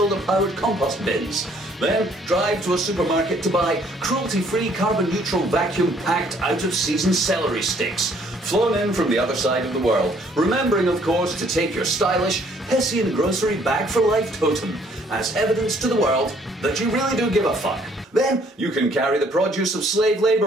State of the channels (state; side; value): normal; both; correlation 0.63